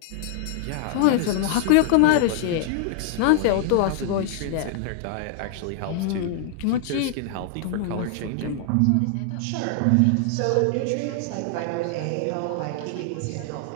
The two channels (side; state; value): both; different; correlation -0.01